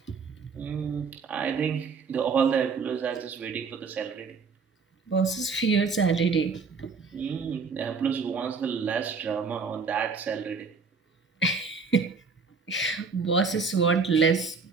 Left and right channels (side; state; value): left; quieter; 5.0 dB